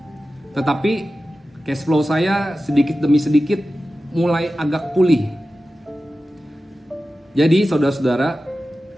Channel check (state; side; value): normal; both; correlation 0.94